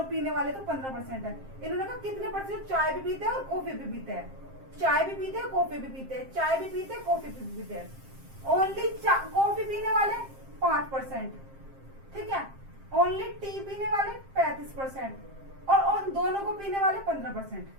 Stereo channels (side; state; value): left; late; 7.5 ms